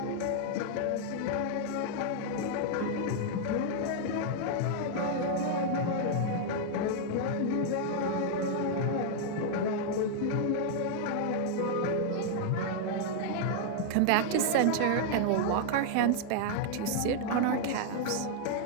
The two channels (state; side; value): different; both; correlation -0.01